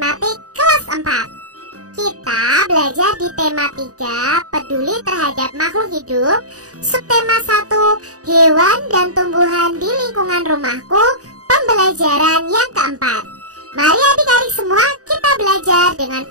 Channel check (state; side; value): late; left; 0.67 ms